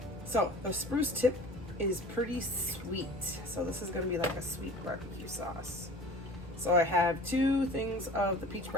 So the spruce tip is pretty sweet. So this is gonna be like a sweet barbecue sauce. So I have 2 things of the peach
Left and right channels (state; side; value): normal; both; correlation 0.42